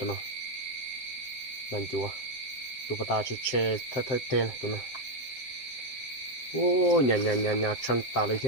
nó nàn chúa tụi bà ta chỉ chơi thay tên tụi nó ô nhà trăng ta lấy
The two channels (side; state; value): right; late; 7.7 ms